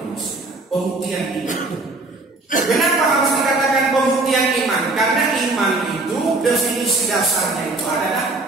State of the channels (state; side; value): quieter; left; 3.2 dB